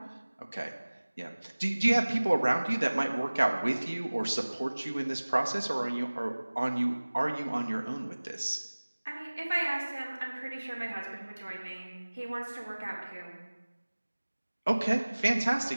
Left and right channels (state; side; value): inverted; both; correlation -1.00